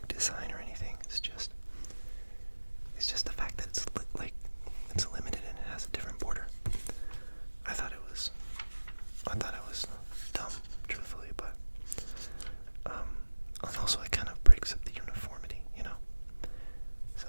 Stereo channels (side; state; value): both; inverted; correlation -1.00